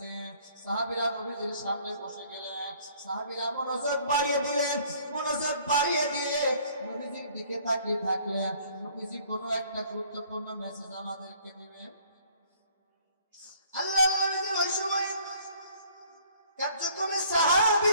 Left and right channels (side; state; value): both; inverted; correlation -0.57